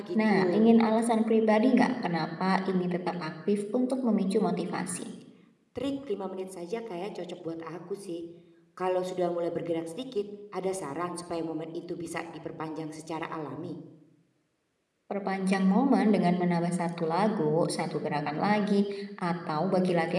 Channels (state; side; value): identical; both; correlation 1.00